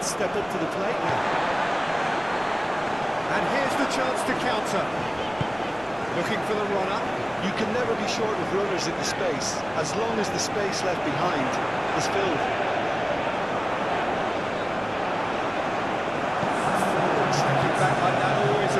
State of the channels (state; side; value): noise; left; rumble, 24 dB below the sound